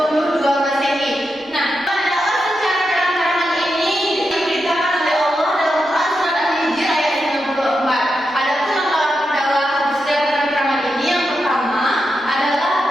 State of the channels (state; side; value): normal; both; correlation 0.87